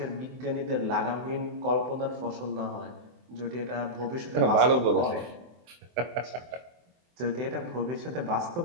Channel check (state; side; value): late; left; 24 ms